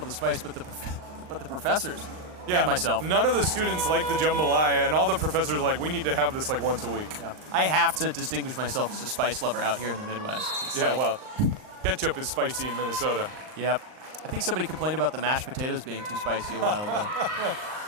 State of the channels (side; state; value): left; late; 39 ms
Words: the spice but the professors. Yeah, and myself. None of the students like the jambalaya, and all the professors are like, we need to have this like once a week. Yeah. I have to distinguish myself as a spice lover out here in the Midwest. It's well, ketchup is spicy in Minnesota. Yep. I think somebody complained about the mashed potatoes being too spicy a while ago.